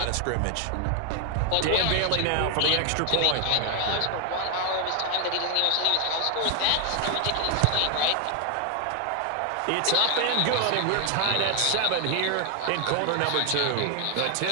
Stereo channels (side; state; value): both; different; correlation 0.00